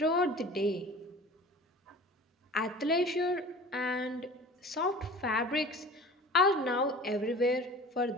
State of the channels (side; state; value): both; normal; correlation 0.41